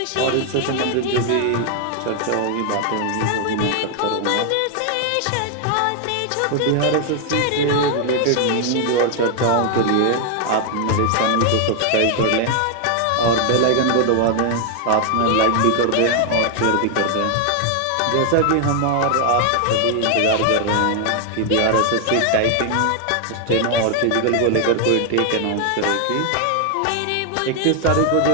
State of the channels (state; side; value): different; both; correlation 0.00